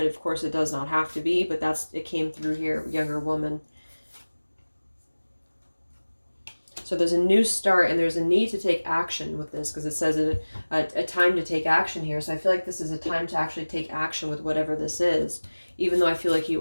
of course it does not have to be, but it came through here, younger woman. So there's a new start, and there's a need to take action with this, because it says a time to take action here. So I feel like this is a time to actually take action with whatever this is. Even though I feel like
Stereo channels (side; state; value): both; inverted; correlation -1.00